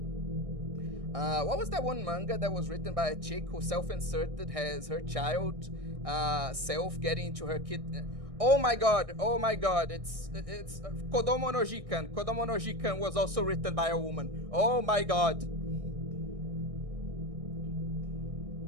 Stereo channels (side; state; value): left; late; 1.6 ms